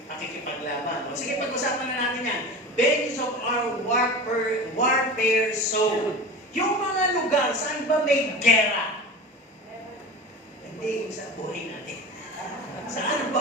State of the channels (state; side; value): normal; both; correlation 0.32